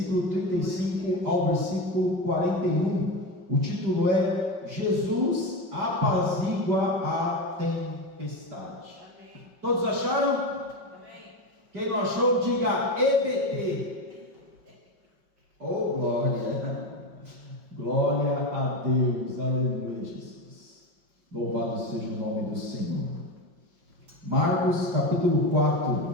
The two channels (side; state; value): left; late; 5.4 ms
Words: 35 ao versículo 41. O título é Jesus apazigua a tempestade. Amém. Todos acharam? Amém. Quem não achou, diga EBT. Oh, glória! Glória a Deus, aleluia, Jesus. Louvado seja o nome do Senhor. Marcos capítulo